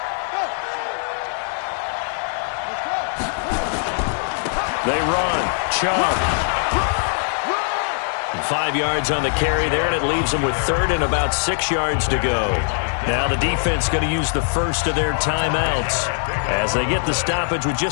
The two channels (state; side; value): silent; right; digital silence